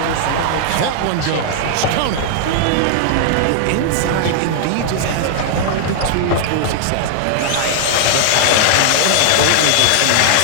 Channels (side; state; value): both; different; correlation 0.00